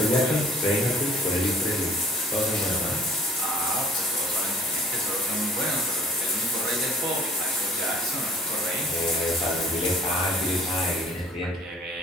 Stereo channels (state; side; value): normal; both; correlation 0.54